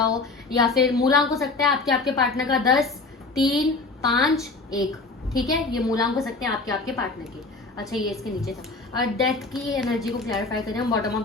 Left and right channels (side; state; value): right; quieter; 3.7 dB